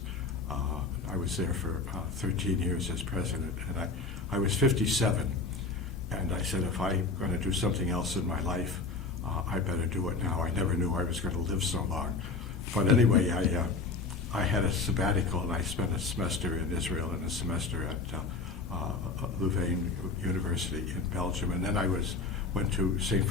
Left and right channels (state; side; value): quieter; right; 4.0 dB